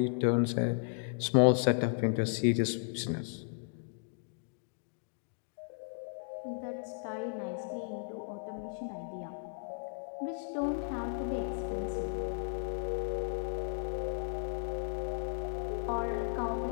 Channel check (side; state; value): right; silent; digital silence